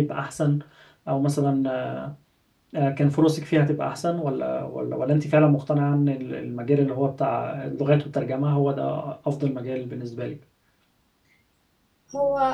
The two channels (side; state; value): both; identical; correlation 1.00